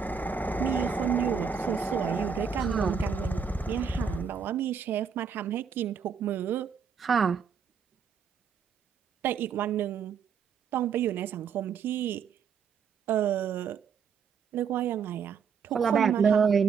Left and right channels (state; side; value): quieter; left; 6.5 dB